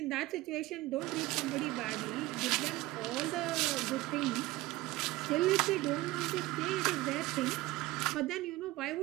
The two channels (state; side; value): quieter; left; 18.8 dB